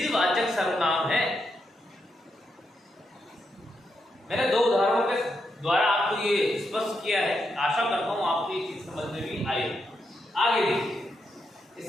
सर्वनाम है। मैंने दो उदाहरणों के द्वारा आपको ये स्पष्ट किया है। आशा करता हूं आपको ये चीज समझ में भी आई। आगे देखिए,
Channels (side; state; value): both; normal; correlation 0.83